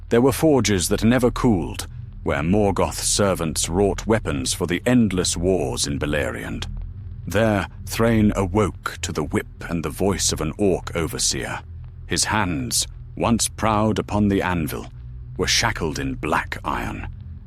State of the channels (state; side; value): identical; both; correlation 1.00